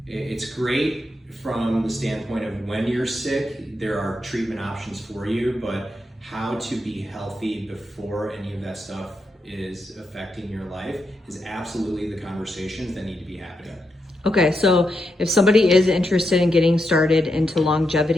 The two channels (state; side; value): normal; both; correlation 0.84